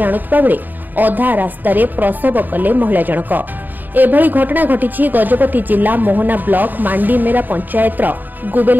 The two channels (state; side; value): late; left; 0.088 ms